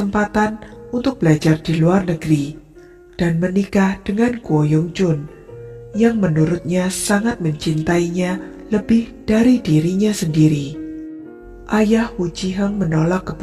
untuk belajar di luar negeri dan menikah dengan Ko Yong-jun, yang menurutnya sangat mencintainya lebih dari dirinya sendiri. Ayah Wu Ji-heng menolak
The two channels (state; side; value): identical; both; correlation 1.00